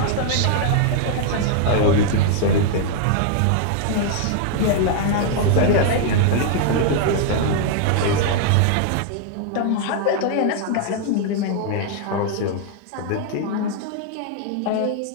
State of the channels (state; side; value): different; both; correlation 0.00